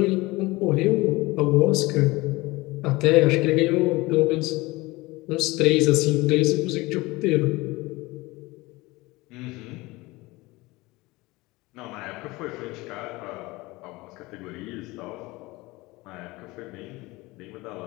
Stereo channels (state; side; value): quieter; right; 21.7 dB